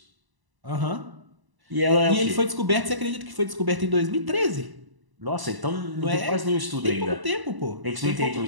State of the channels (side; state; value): left; late; 1.0 ms